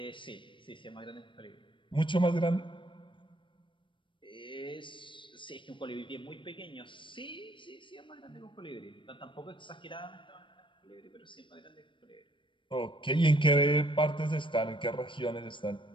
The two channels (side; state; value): right; late; 0.24 ms